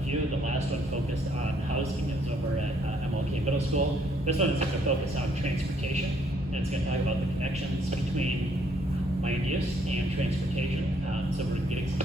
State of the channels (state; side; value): normal; both; correlation 0.68